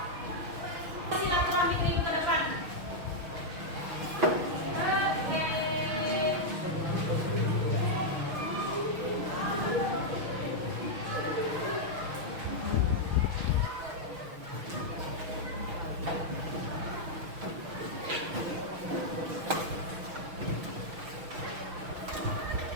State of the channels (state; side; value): late; left; 6.2 ms